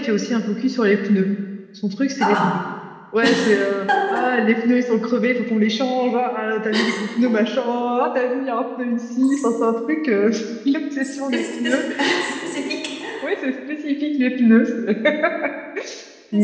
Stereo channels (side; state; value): both; identical; correlation 1.00